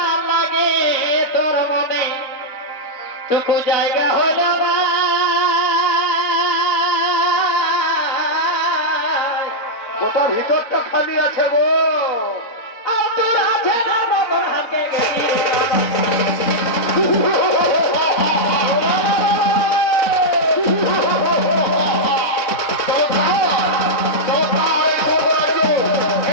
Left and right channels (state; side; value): late; right; 3.6 ms